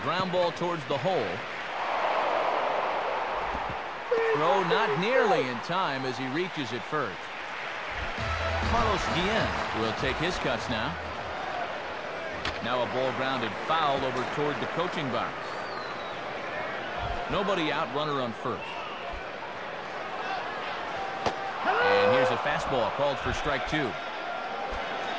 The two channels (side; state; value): both; identical; correlation 1.00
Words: ground ball towards the hole. Throw not nearly in time as he reaches it first. Carlos Guillen will take his cuts now. Now a ball grounded foul over toward the coaching box. Nobody out, runner on first. And here's a fastball called for strike 2.